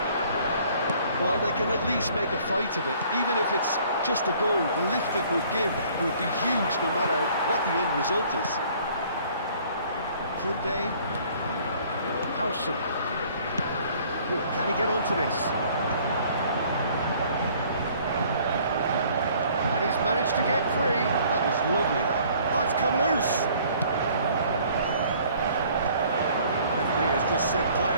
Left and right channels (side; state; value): both; inverted; correlation -0.56